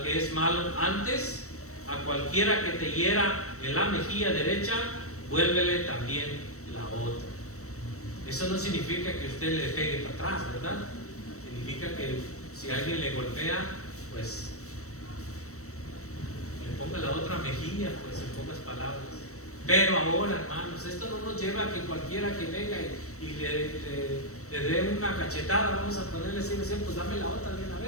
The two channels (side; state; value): right; late; 0.65 ms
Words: que es malo, antes a cualquiera que te hiera en la mejilla derecha, vuélvele también la otra. Eso no significa que usted le pegue para atrás, ¿verdad? Significa que si alguien le golpea, pues le ponga la otra mejilla, pues en pocas palabras. Pero ahora, hermanos, esto no nos lleva a que cualquiera que venga y le dé una cachetada, vamos a ponerle así, pues dame la otra de una